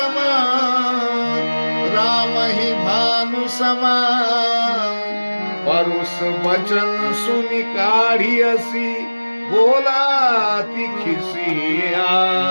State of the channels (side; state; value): both; inverted; correlation -1.00